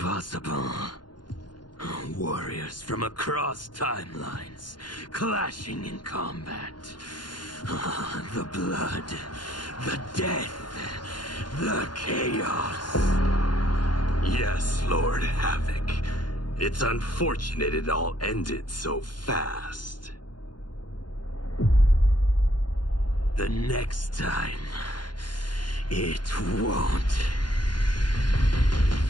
Warriors from across timelines, clashing in combat. The blood, the death, the chaos. Yes, Lord Havoc. It's unfortunate it all ended so fast. The next time, it won't.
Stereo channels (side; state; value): right; late; 0.71 ms